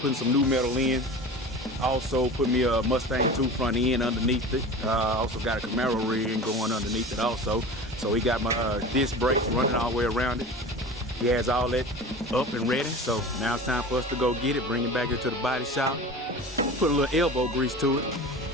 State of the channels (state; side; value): normal; both; correlation 0.35